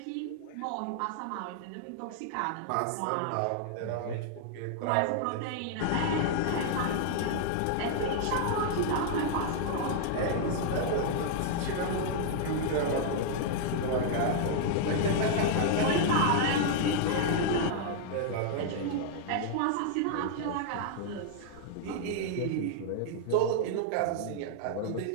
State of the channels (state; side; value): different; both; correlation 0.00